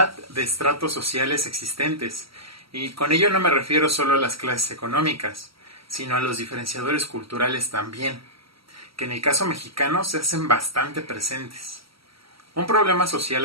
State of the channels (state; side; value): late; left; 0.75 ms